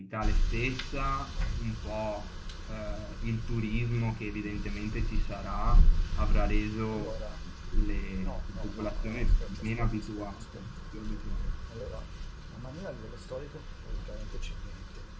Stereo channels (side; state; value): both; identical; correlation 1.00